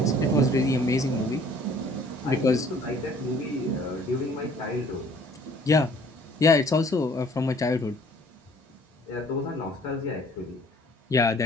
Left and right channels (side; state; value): both; normal; correlation 0.56